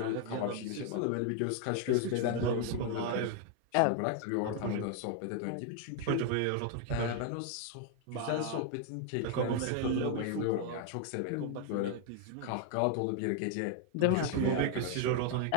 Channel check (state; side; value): different; both; correlation 0.00